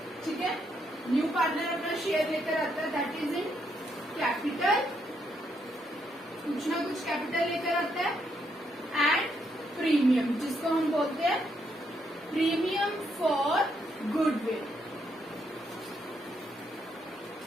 ठीक है. न्यू पार्टनर अपना शेयर लेकर आता है, दैट इज इन कैपिटल, कुछ ना कुछ कैपिटल लेकर आता है, एंड प्रीमियम, जिसको हम बोलते हैं प्रीमियम फॉर गुडविल,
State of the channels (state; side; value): normal; both; correlation 0.76